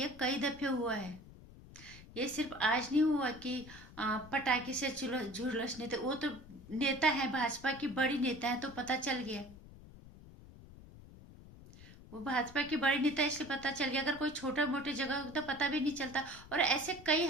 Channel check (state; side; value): noise; left; rumble, 18 dB below the sound